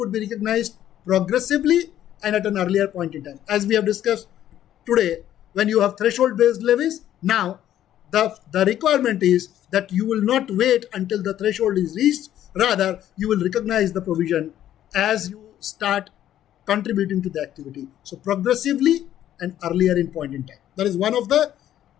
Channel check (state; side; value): quieter; right; 11.8 dB